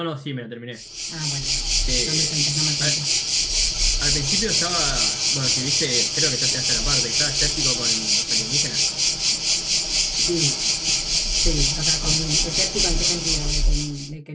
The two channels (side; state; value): both; identical; correlation 1.00